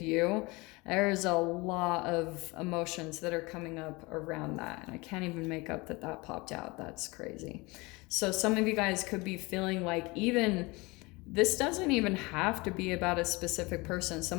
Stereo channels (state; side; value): quieter; right; 24.7 dB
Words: There's a lot of emotions that are coming up around that. And I can't even make up that that popped out. That's crazy. So some of you guys could be feeling like even this doesn't even have to be about a specific person.